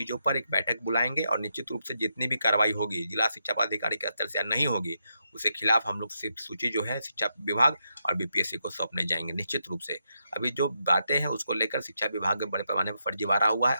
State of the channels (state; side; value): inverted; both; correlation -0.82